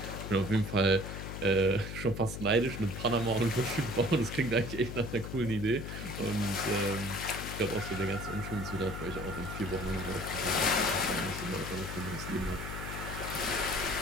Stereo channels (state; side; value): noise; left; hum, 7 dB below the sound